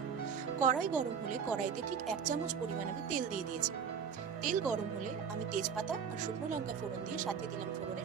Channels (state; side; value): quieter; left; 6.8 dB